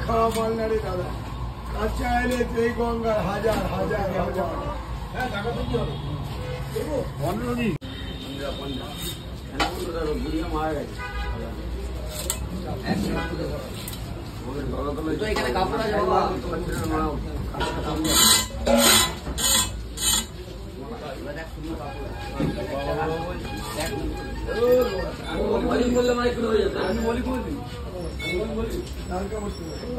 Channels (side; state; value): both; identical; correlation 1.00